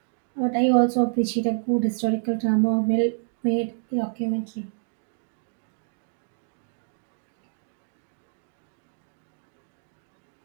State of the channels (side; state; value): left; silent; digital silence